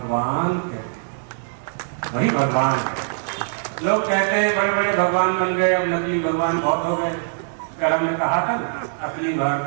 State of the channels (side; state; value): left; silent; 64 dB below the other